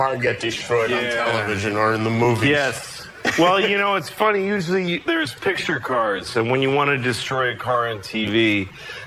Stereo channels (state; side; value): identical; both; correlation 1.00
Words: get destroyed on television or in the movies. Yes. Well, you know, it's funny. Usually there's picture cars, and when you want to destroy a car on TV,